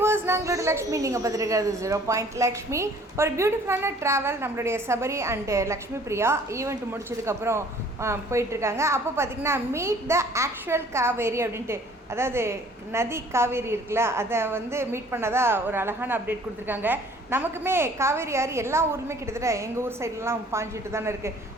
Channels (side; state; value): both; normal; correlation 0.54